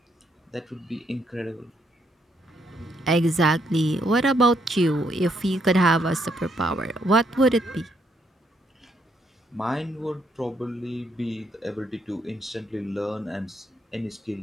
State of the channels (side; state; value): both; normal; correlation 0.74